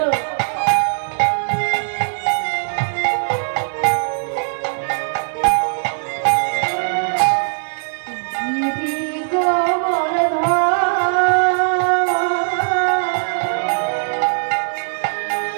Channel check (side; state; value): left; silent; 60 dB below the other